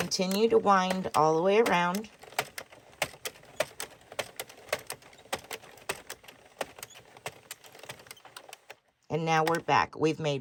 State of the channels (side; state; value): both; identical; correlation 1.00